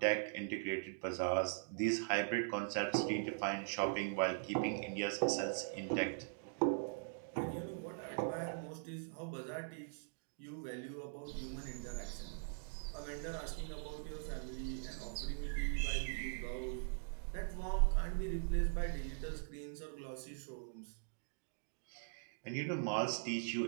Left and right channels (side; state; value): left; silent; digital silence